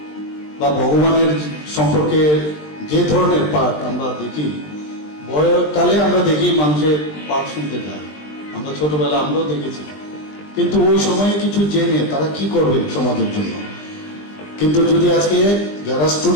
বা ভগবানের সম্পর্কে যে ধরনের পাঠ আমরা দেখি, বয়কালে আমরা দেখি মানুষের পাঠ শুনতে যায়, আমরা ছোটবেলা আমরাও দেখেছি, কিন্তু ওই সময়ে কিছু জেনে তারা কি করবে সমাজের জন্য। কিন্তু যদি আজকে যারা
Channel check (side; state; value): right; late; 20 ms